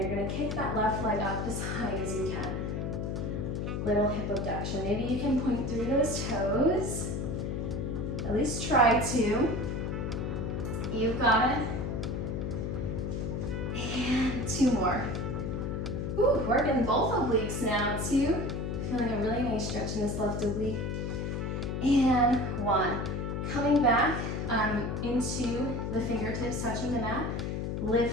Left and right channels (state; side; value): noise; left; hum, 2 dB below the sound